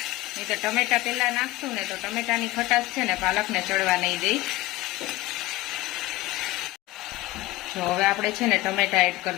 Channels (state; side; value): quieter; right; 18.5 dB